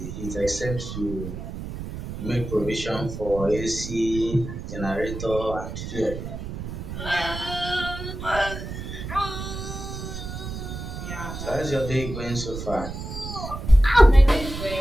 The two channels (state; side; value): noise; right; rumble, 8 dB below the sound